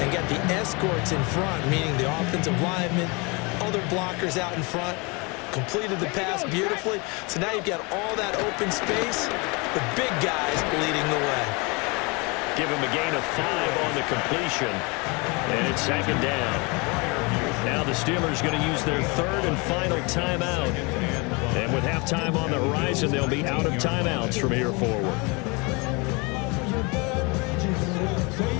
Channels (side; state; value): right; quieter; 28.9 dB